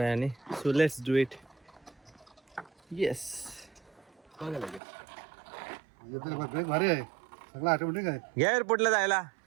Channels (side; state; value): left; drops out; at 4.8 s